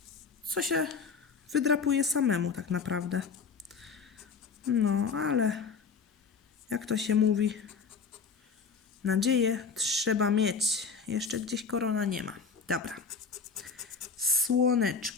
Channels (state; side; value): quieter; right; 5.4 dB